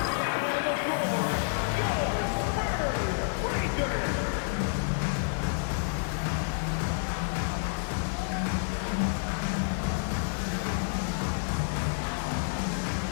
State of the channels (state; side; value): silent; right; 57 dB below the other